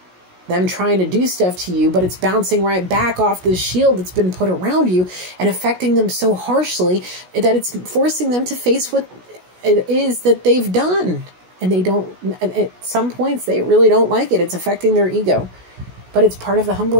Them trying to do stuff to you, but it's bouncing right back off this shield that's been put around you and affecting them so harshly that it's forcing them to face what it is that they've done. And they don't, at some points, they really don't like it. It's affecting their ego. But it's part of the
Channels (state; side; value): late; left; 16 ms